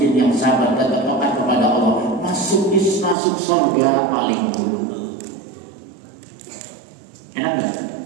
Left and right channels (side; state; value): left; drops out; at 3.2 s